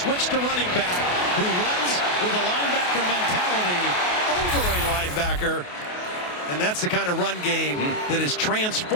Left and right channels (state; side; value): late; right; 28 ms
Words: to running back who runs with a linebacker mentality over a linebacker. And that's the kind of run game that has